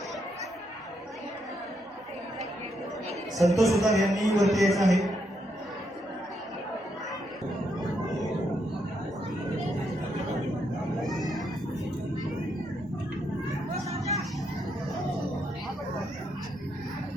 संतोष सुतार यांनी वरती यायचं आहे.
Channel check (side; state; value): both; normal; correlation 0.78